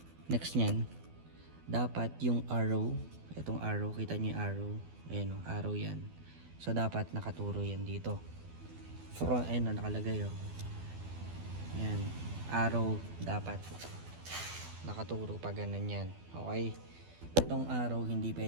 Next nyan, dapat yung arrow, itong arrow, kita nyo yung arrow, ayan o, arrow yan. So, dapat nakaturo yan dito. Front, ayan o, nakalagay o. Ayan, arrow, dapat nakaturo pa ganun yan. Okay? Itong arrow hindi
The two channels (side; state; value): left; late; 12 ms